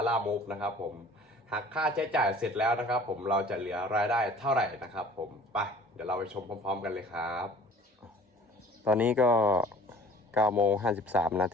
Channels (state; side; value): normal; both; correlation 0.49